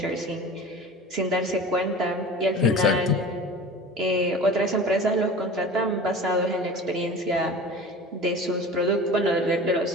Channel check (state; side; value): normal; both; correlation 0.37